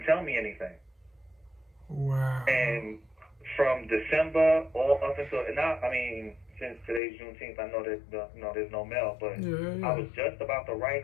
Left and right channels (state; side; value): drops out; right; at 7.0 s